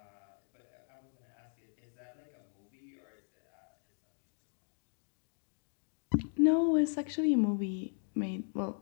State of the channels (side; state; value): right; silent; 53 dB below the other